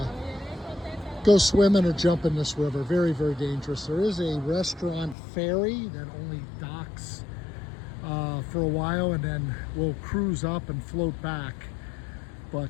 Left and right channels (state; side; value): drops out; right; at 5.2 s